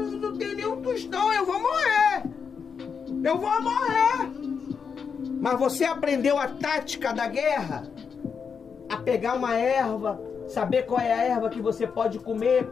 tem nenhum tostão, eu vou morrer. Eu vou morrer. Mas você aprendeu a tática da guerra? A pegar uma erva, saber qual é a erva que você pode comer,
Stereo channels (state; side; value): quieter; right; 6.2 dB